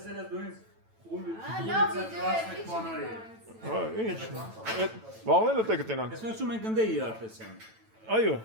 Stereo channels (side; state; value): left; late; 9.0 ms